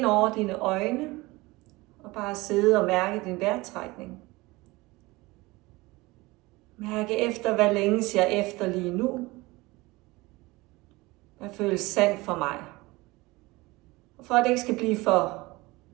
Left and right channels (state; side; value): quieter; left; 21.8 dB